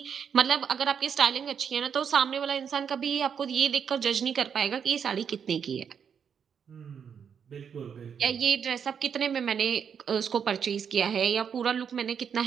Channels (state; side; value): quieter; left; 7.4 dB